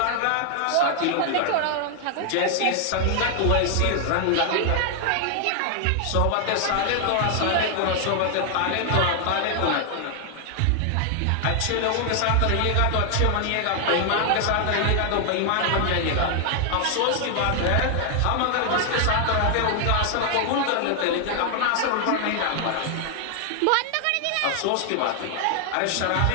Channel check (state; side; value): different; both; correlation 0.00